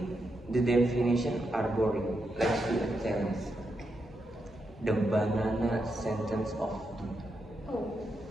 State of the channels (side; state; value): both; normal; correlation 0.84